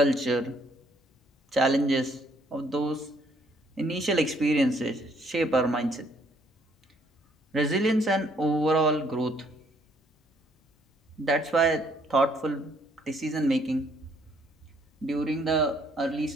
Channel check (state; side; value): normal; both; correlation 0.66